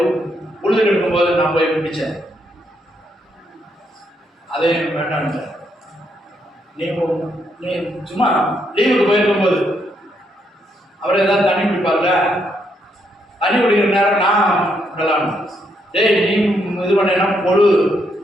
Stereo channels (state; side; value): normal; both; correlation 0.76